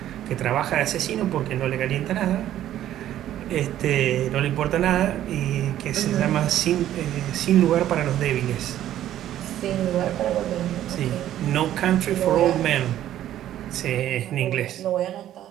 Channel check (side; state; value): left; quieter; 12.2 dB